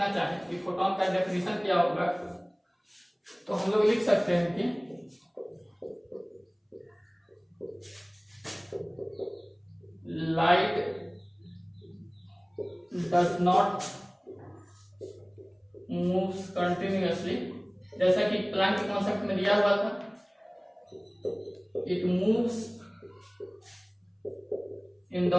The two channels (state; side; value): identical; both; correlation 1.00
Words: चाहें कि फोटॉन का डेफिनेशन क्या होगा, तो हम लोग लिख सकते हैं कि light does not moves continuously, जैसा कि प्लैंक के कॉन्सेप्ट में दिया हुआ था, it moves in